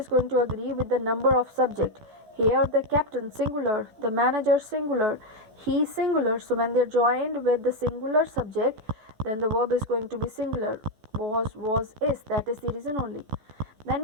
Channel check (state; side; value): late; left; 14 ms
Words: going to agree with the number of subject. Here the captain singular, the manager singular, he singular. So when they're joined with the singular subject, then the verb is going to be singular. Was, is. That is the reason only. Then